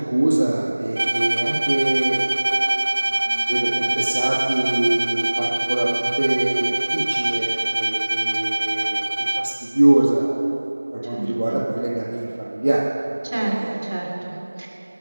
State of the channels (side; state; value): both; inverted; correlation -1.00